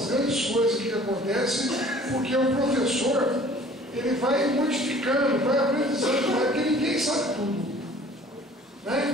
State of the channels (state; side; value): normal; both; correlation 0.50